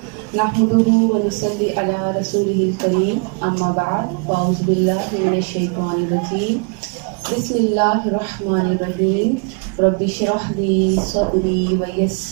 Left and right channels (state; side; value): quieter; left; 36.7 dB